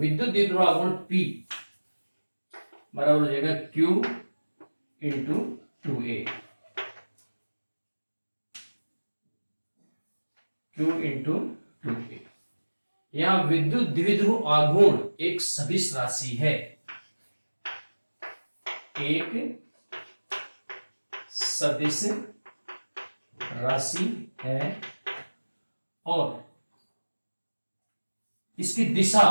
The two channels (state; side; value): inverted; both; correlation -1.00